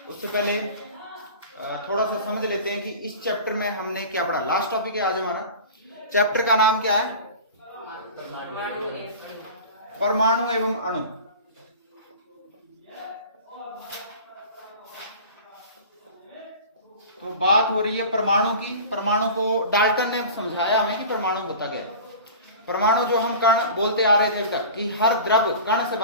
उससे पहले थोड़ा सा समझ लेते हैं कि इस चैप्टर में हमने क्या पढ़ा। लास्ट टॉपिक है आज हमारा। चैप्टर का नाम क्या है? परमाणु एवं अणु। तो बात हो रही है परमाणु की। परमाणु को डाल्टन ने समझाया हमें कि परमाणु होता क्या है। परमाणु जो हम कण बोलते आ रहे थे अभी तक कि हर द्रव कण से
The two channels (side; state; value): both; inverted; correlation -0.38